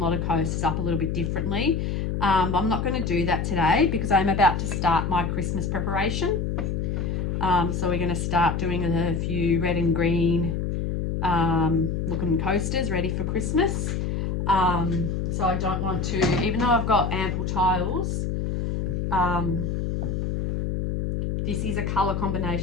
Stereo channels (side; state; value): left; noise; hum, 1 dB below the sound